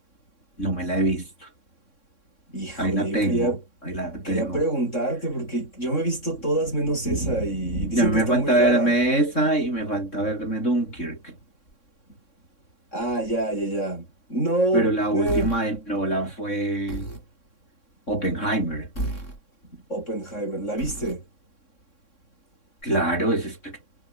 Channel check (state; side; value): late; right; 3.6 ms